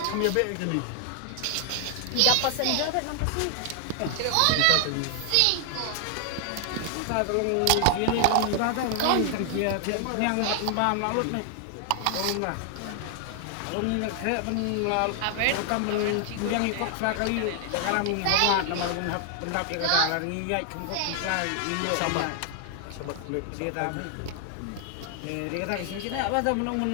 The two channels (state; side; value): different; both; correlation 0.00